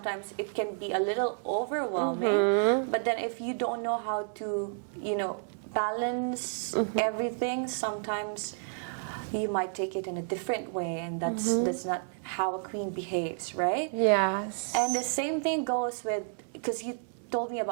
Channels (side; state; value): left; silent; 57 dB below the other